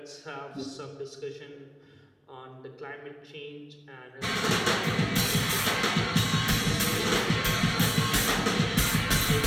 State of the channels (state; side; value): identical; both; correlation 1.00